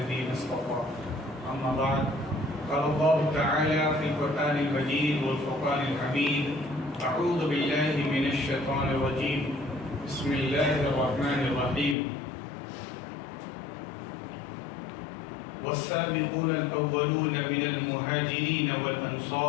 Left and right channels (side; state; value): right; drops out; at 12.0 s